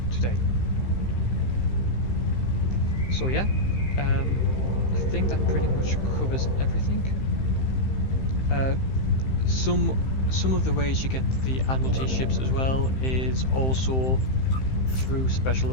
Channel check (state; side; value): late; right; 15 ms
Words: today. So yeah, I think that pretty much covers everything. Some of the ways you get the Admiralty ships as well is also through special